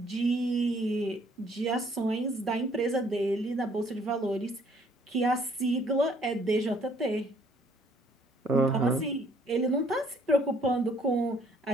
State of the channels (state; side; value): normal; both; correlation 0.63